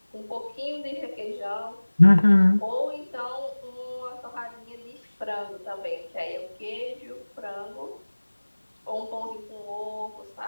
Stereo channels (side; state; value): both; inverted; correlation -1.00